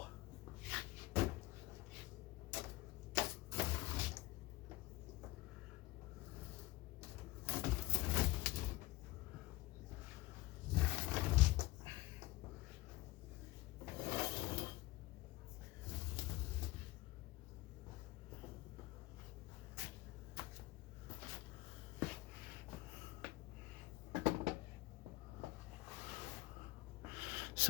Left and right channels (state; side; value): quieter; right; 19.3 dB